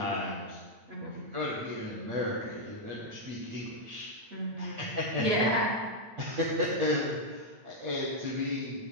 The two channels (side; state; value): left; late; 9.0 ms